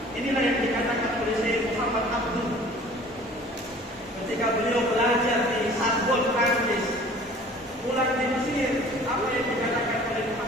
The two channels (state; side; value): normal; both; correlation 0.48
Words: Inilah yang dikatakan oleh Syekh Muhammad Abdul ketika beliau belajar di Sorbonne, Prancis, pulang di Mesir. Apa yang dikatakan oleh